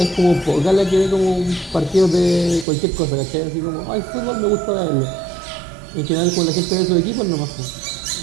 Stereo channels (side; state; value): left; drops out; at 2.7 s